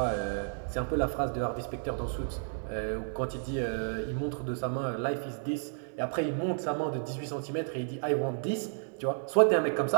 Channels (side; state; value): left; silent; digital silence